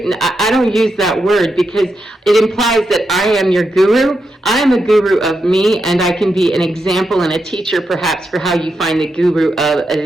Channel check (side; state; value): both; normal; correlation 0.85